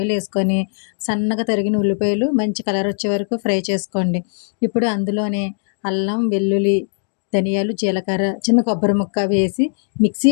ఏసుకొని, సన్నగా తరిగిన ఉల్లిపాయలు మంచి కలర్ వచ్చే వరకు ఫ్రై చేసుకోండి. ఇప్పుడు అందులోనే అల్లం, వెల్లుల్లి, ధనియాలు, జీలకర్ర, చిన్న కొబ్బరి ముక్క వేసి మిక్సీ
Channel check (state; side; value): silent; right; 61 dB below the other